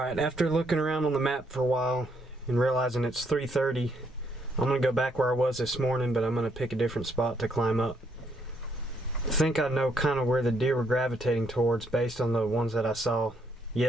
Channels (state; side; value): normal; both; correlation 0.72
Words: after looking around on the map for a while and realizing it's 3:30, I'm gonna go back where I was this morning, but I'm gonna pick a different spot to climb up. I think I know kind of where the deer were gravitating towards based on the ones that I saw